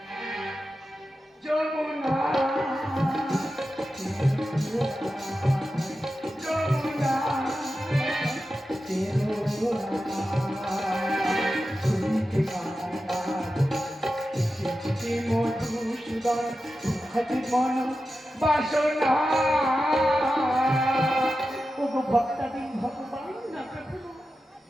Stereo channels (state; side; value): normal; both; correlation 0.92